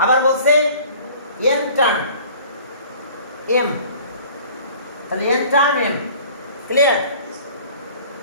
আবার বলছে n টার্ম m, তাহলে n টার্ম m। ক্লিয়ার?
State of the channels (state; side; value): inverted; both; correlation -0.49